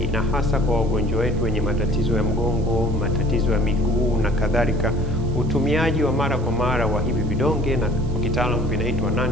na hasa kwa wagonjwa wetu wenye matatizo ya mgongo, matatizo ya miguu na kadhalika, utumiaji wa mara kwa mara wa hivi vidonge, na kwa kitaalamu vinaitwa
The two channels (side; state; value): right; noise; hiss, 26 dB below the sound